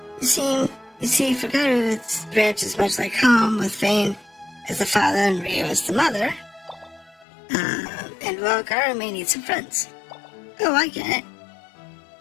You see, Forgotten-Its ranch is much like home, with Phayne as the father and Rio as the mother. And well, Gara may need some friends. Oh, I get it.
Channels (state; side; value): drops out; right; at 7.2 s